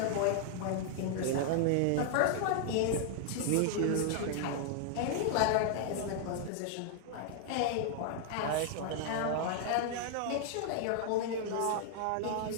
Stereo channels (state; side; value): different; both; correlation -0.01